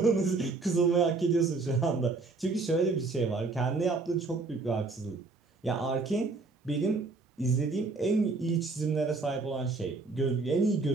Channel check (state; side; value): quieter; left; 3.8 dB